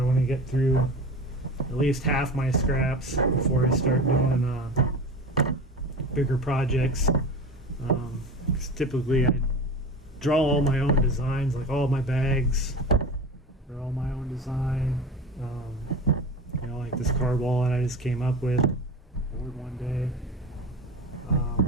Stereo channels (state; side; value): normal; both; correlation 0.30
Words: want to get through at least half my scraps before I start doing bigger projects. 'Cause typically I draw all my own designs, like all my bags are all my own design. Like this card wallet I just came up with, ordered one day.